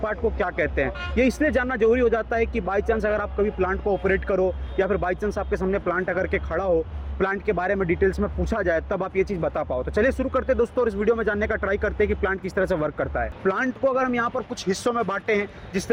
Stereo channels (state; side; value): identical; both; correlation 1.00